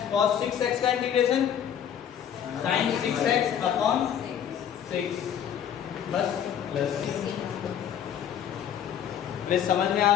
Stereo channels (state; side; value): quieter; right; 9.2 dB